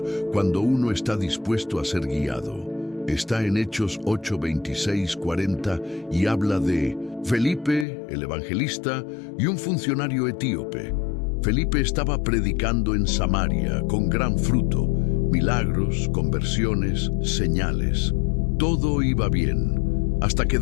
cuando uno está dispuesto a ser guiado. Está en Hechos 8, 26, 40 y habla de Felipe, el evangelista, y un funcionario etíope. Felipe estaba predicando en Samaria con gran fruto, milagros, conversiones, señales. Todo iba bien, hasta que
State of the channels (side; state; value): right; drops out; at 7.9 s